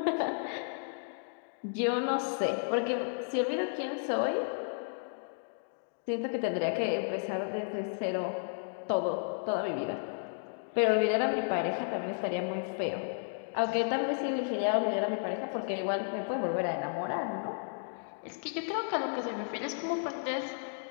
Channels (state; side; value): silent; right; digital silence